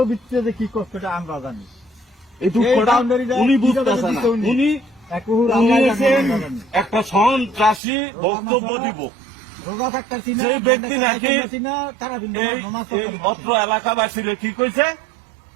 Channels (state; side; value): drops out; left; at 7.8 s